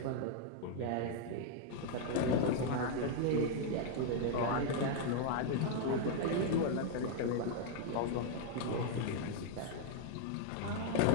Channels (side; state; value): both; different; correlation 0.00